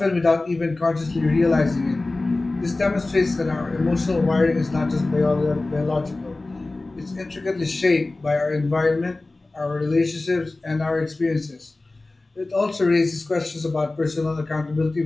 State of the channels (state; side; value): quieter; right; 3.1 dB